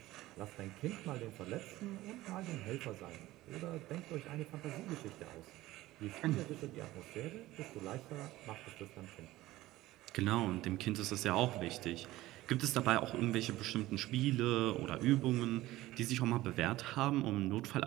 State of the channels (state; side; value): quieter; left; 16.9 dB